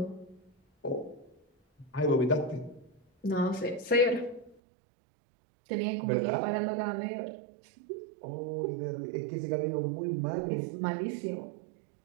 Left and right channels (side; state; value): left; drops out; at 4.5 s